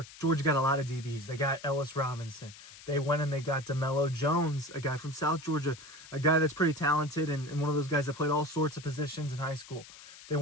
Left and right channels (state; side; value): noise; left; hiss, 18 dB below the sound